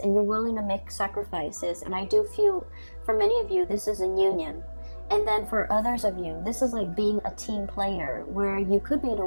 you're willing to make sacrifices. And I do feel for many of you, this is a union. And then for others of you, this is like being a team player, where you could be in a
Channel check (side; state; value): both; inverted; correlation -1.00